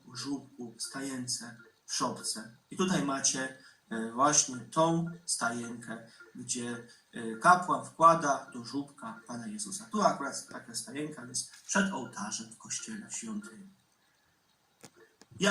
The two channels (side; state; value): both; identical; correlation 1.00